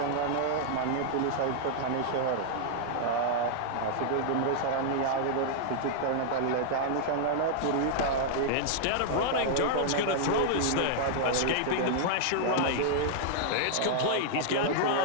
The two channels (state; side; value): different; both; correlation -0.01